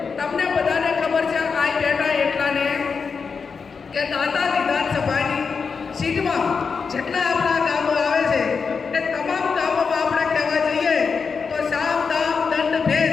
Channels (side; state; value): right; quieter; 5.4 dB